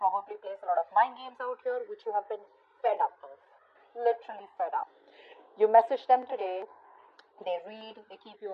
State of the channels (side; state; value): both; identical; correlation 1.00